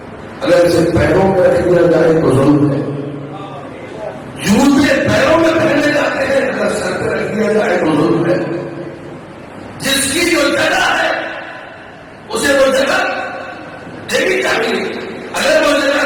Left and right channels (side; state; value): both; identical; correlation 1.00